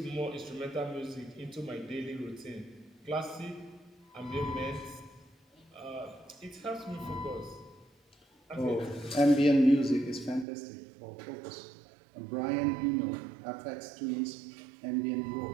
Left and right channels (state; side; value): drops out; left; at 10.5 s